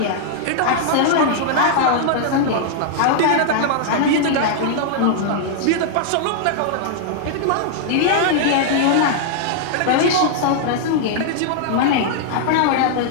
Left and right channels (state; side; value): different; both; correlation -0.01